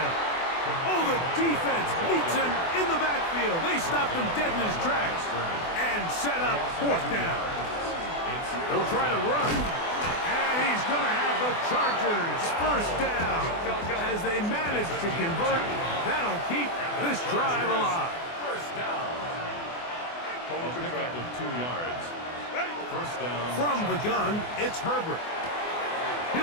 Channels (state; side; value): late; right; 24 ms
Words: Oh, the defense meets him in the backfield. They stopped him dead in his tracks and set up 4th down. They'll try to run, and he's going to have the Chargers first down. As they manage to convert, that'll keep this drive alive. First down. A pickup of 2 yards. First down. From the gun, it's Herbert.